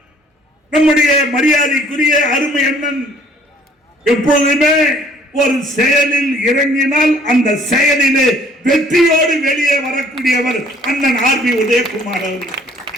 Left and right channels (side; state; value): both; normal; correlation 0.58